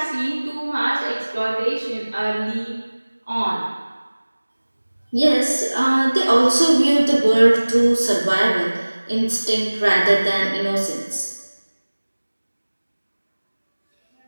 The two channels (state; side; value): inverted; both; correlation -1.00